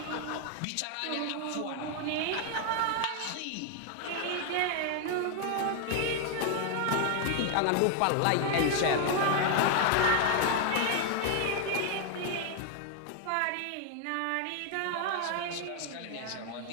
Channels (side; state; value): both; different; correlation 0.00